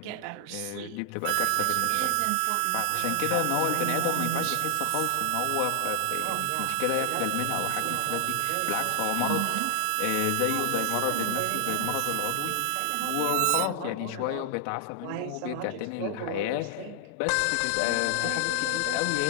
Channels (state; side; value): different; both; correlation 0.00